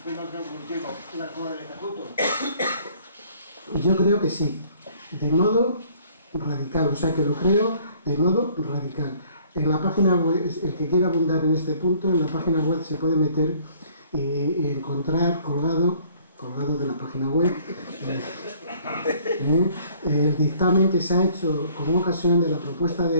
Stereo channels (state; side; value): inverted; both; correlation -0.58